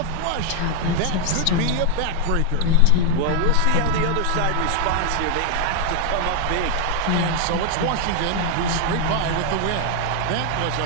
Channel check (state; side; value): different; both; correlation 0.00